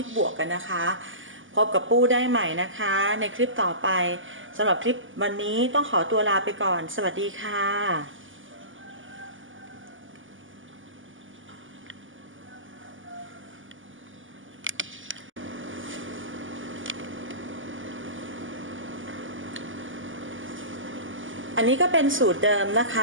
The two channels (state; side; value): late; left; 0.57 ms